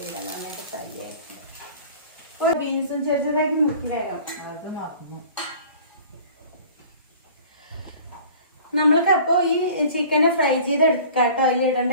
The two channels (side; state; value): both; inverted; correlation -0.46